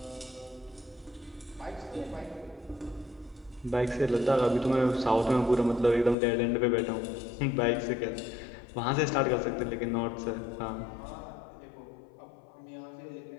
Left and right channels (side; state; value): right; drops out; at 6.2 s